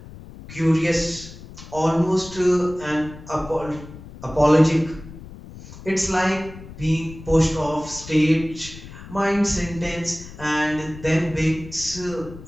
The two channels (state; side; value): noise; left; rumble, 16 dB below the sound